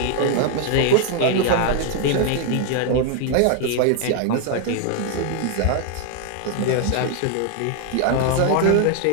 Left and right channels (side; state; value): both; different; correlation 0.00